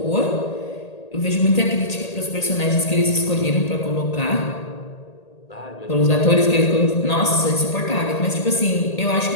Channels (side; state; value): right; late; 1.8 ms